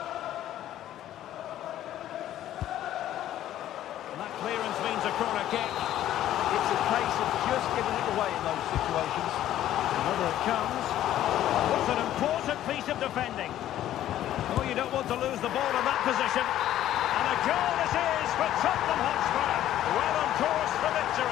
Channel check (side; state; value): right; quieter; 12.5 dB